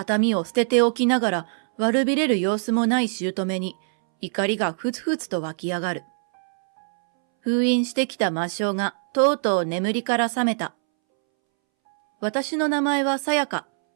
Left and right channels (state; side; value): silent; left; 63 dB below the other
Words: 見を捨てておきながら悪びれる様子もない姑に怒りがふつふつと湧き上がる。封印してきた魔性がとうとう眠りから覚めた。私の名前はさやか。